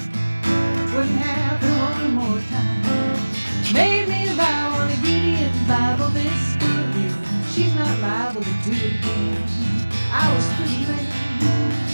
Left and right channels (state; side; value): inverted; both; correlation -1.00